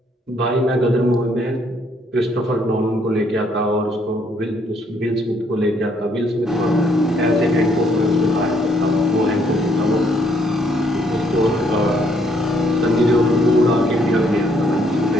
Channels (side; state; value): both; normal; correlation 0.68